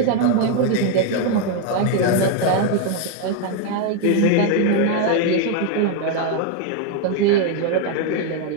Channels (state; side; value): different; both; correlation 0.01